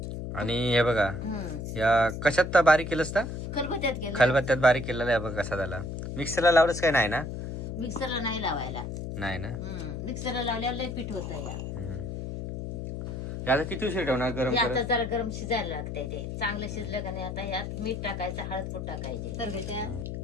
आणि हे बघा या कशात तर बारीक केलंस का? खलबत्त्यात केलं. खलबत्त्यात बारीक केलेला आहे बघा कसा झाला. मिक्सरला लावलंच काय नाही ना? मिक्सरला नाही लावायला. नाही ना. मिक्सरला लावल्यावर लय पीठ होतं या. आता किती उशीर ठेवणार गरम हे आता करत? जरा गरम शिजायला लागतंय, ते चांगलं शिजलं का नाही आता ह्यात मीठ टाकायचं, हळद पूड टाकायचे. तर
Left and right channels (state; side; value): noise; left; hum, 6 dB below the sound